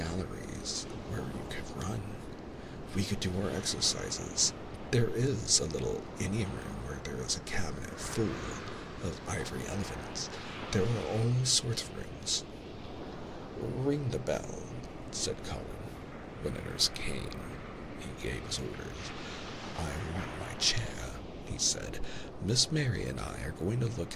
where you could run. We could do our exercises. There is a little Indian room where there is a cabinet full of ivory elephants. There are all sorts of rooms. Ring the bell, said Colin. When the nurse came, he gave his orders. I want my chair, he said. Miss Mary and I are going to look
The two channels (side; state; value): both; identical; correlation 1.00